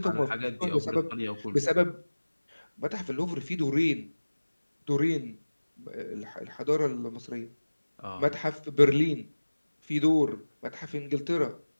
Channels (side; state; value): both; inverted; correlation -1.00